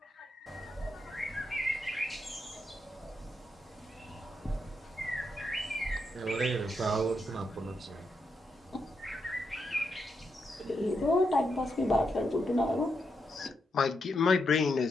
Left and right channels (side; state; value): both; normal; correlation 0.82